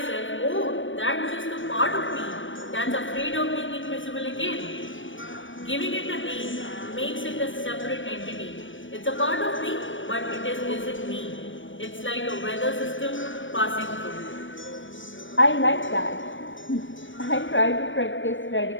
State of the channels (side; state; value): right; late; 0.56 ms